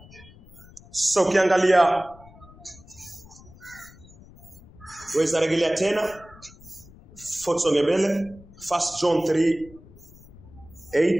So ukiangalia, weza rejelea tena Fotsonge mbele 1 John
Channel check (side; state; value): left; noise; rumble, 22 dB below the sound